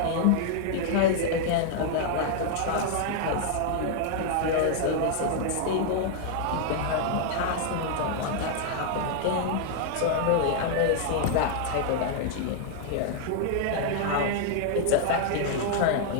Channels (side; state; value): both; different; correlation 0.00